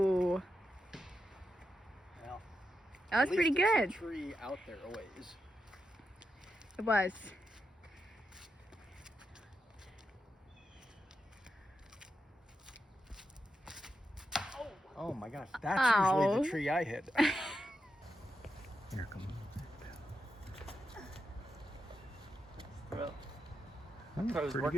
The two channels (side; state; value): both; normal; correlation 0.86